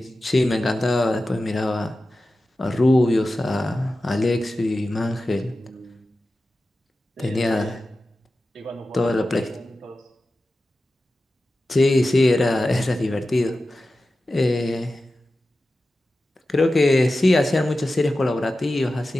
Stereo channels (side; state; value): both; normal; correlation 0.94